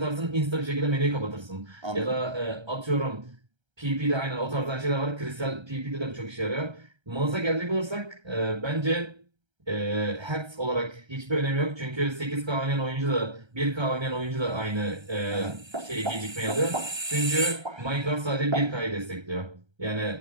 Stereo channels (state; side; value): late; left; 1.3 ms